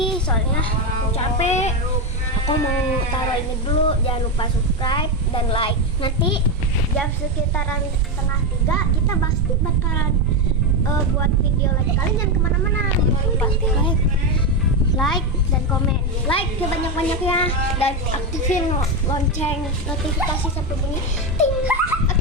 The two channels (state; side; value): normal; both; correlation 0.11